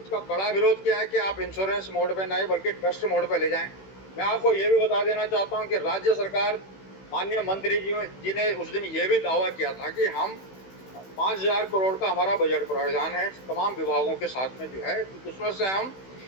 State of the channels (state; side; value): late; right; 16 ms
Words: कड़ा विरोध किया है कि आप इंश्योरेंस मोड पे नहीं बल्कि ट्रस्ट मोड पे ले जाएं। मैं आपको ये भी बता देना चाहता हूँ कि राज्य सरकार माननीय मंत्री जी ने उस दिन ये भी दावा किया था कि हम 5,000 करोड़ का हमारा बजट प्रावधान है तमाम विभागों के साथ में जो है, उसमें से हम